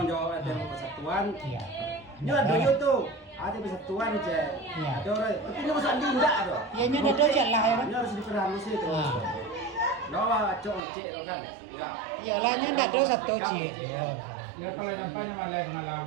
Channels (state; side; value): drops out; left; at 10.8 s